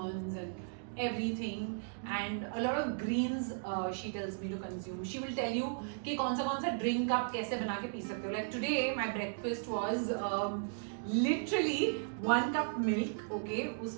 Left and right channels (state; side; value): silent; left; digital silence